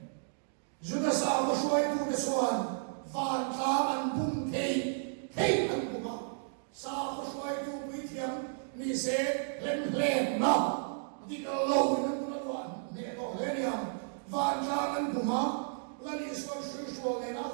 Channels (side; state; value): left; silent; digital silence